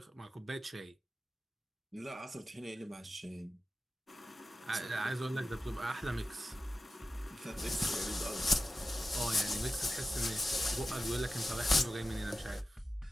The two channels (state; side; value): normal; both; correlation 0.93